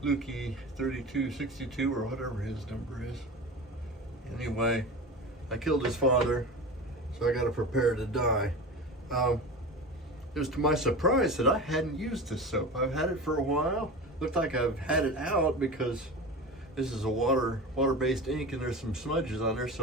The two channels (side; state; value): both; normal; correlation 0.30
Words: Lukey 3262 or whatever his number is. Anyway, I killed his father, so I got to prepare to die. It was to my surprise that I hadn't used this soap. I've had it for a while. Looked like I've had it out because this is a water-based ink and there's some smudges on there,